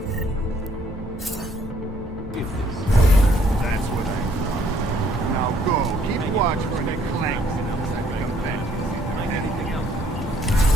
Is this? That's what I thought. Now go. Keep watch for any clanks outside the convention. Anything else?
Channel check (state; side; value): normal; both; correlation 0.64